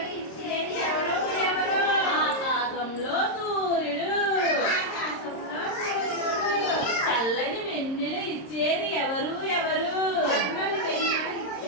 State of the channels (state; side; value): late; right; 26 ms